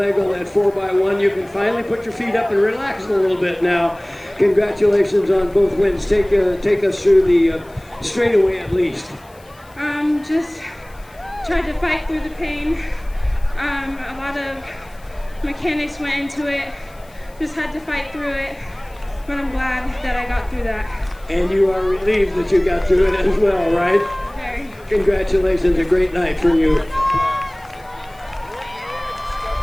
on that 4x1. You can finally put your feet up and relax a little bit now. Congratulations on both wins. Take us through the straightaway at least. Just tried to fight through the pain. A lot of mechanics went into it. Just had to fight through it, but I'm glad that I got through that. And you are relieved that you got through it as well, right? Very. Congratulations, a great night for you.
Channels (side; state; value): left; noise; hiss, 28 dB below the sound